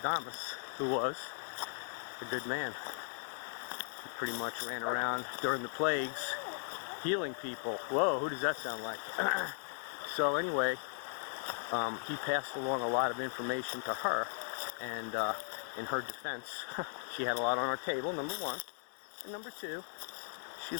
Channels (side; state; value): right; silent; digital silence